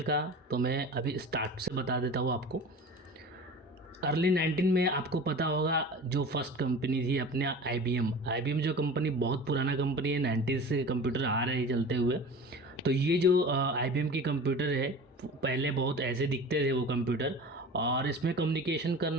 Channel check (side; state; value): both; normal; correlation 0.37